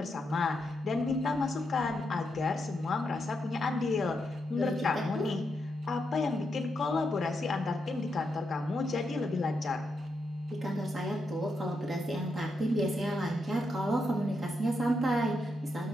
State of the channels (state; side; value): normal; both; correlation 0.83